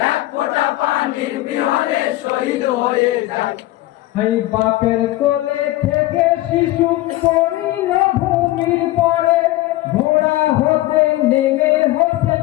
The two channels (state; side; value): quieter; right; 17.2 dB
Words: এক ফোঁটা পানির বিহনে শহীদ হয়ে যায়। এই বাপের কোলে থেকে শিশু পড়িল ভূমির পরে, ঘোড়া হতে নেমে হতে